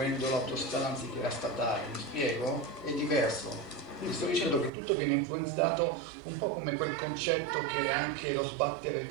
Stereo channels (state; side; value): drops out; left; at 4.7 s